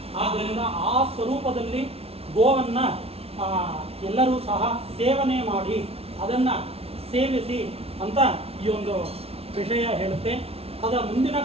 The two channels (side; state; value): left; late; 0.29 ms